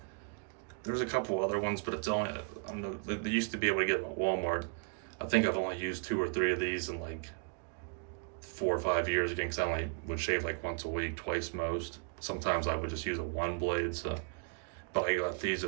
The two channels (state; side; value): quieter; left; 35.9 dB